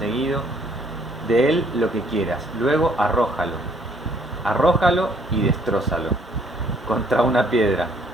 de él lo que quieras, luego arrójalo y destrózalo contra una piedra,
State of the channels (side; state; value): both; normal; correlation 0.63